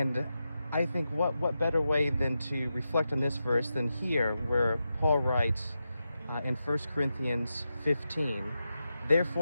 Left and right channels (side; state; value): both; inverted; correlation -0.89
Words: I think what better way than to reflect on this verse than here, where Paul writes in 1 Corinthians 15,